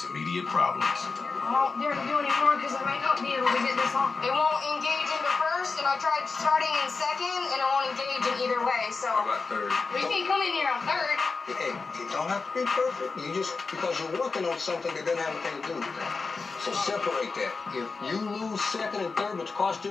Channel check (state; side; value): quieter; right; 4.4 dB